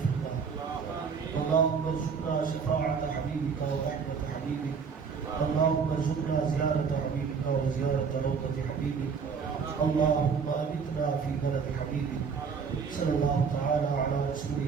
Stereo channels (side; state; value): left; quieter; 5.9 dB